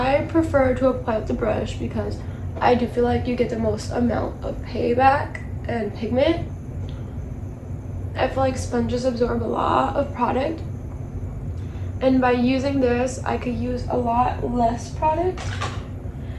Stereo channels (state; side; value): identical; both; correlation 1.00